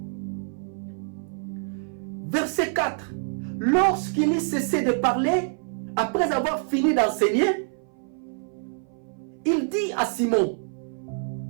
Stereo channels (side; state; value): left; silent; 56 dB below the other